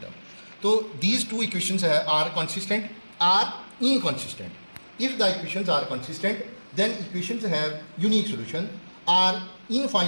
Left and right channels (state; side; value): inverted; both; correlation -1.00